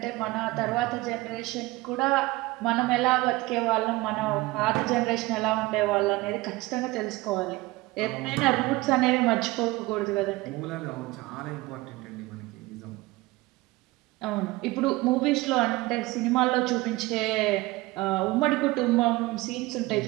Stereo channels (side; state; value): left; quieter; 20.7 dB